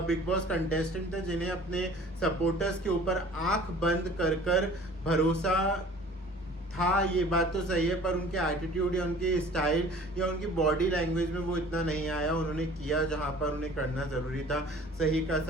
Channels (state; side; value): normal; both; correlation 0.48